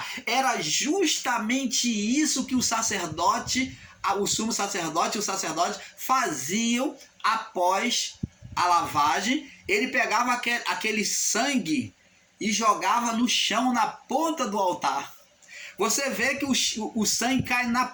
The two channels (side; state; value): both; identical; correlation 1.00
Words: Era justamente isso que o sacerdote, o sumo sacerdote e o sacerdote faziam após a lavagem. Ele pegava aquele sangue e jogava no chão, na ponta do altar. Você vê que o sangue cai